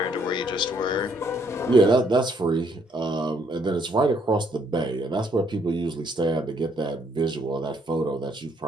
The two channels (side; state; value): both; normal; correlation 0.69